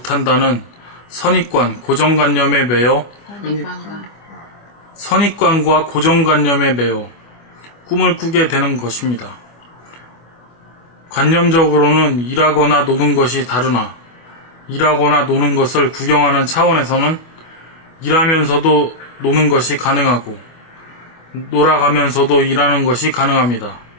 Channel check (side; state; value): right; late; 25 ms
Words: 선입관, 고정관념에 매여 선입관과 고정관념에 매여 꿈을 꾸게 되는 것입니다. 관념적으로는 일하거나 노는 것이 다르나 일하거나 노는 것을 구경하는 차원에서는 일하면서도 노는 것이 가능하고 놀아가면서도 일하는 것이 가능합니다.